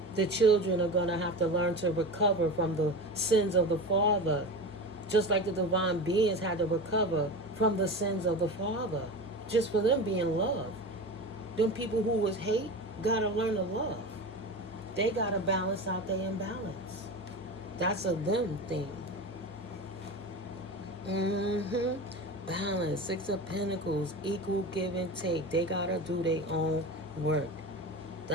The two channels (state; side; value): normal; both; correlation 0.28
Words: The children are going to have to learn to recover from the sins of the father, just like the divine beings had to recover from the sins of the father, just for them being loved. Them people who was hate got to learn to love. They got to balance out their imbalance. That's a them thing. Balance. 6 of Pentacles. Equal give and take. They got to do their own work.